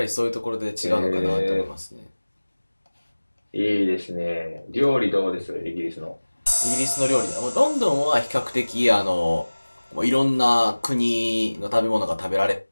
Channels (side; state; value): both; inverted; correlation -1.00